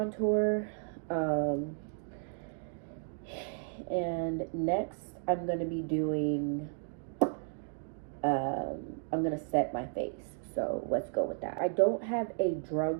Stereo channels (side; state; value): left; silent; 55 dB below the other